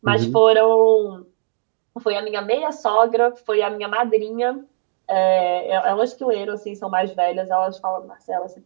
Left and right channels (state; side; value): silent; left; digital silence